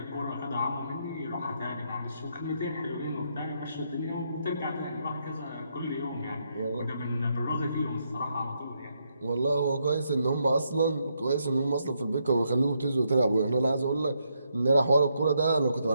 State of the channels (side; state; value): both; inverted; correlation -0.78